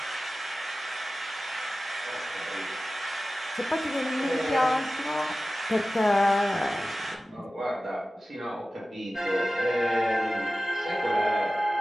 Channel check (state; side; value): normal; both; correlation 0.96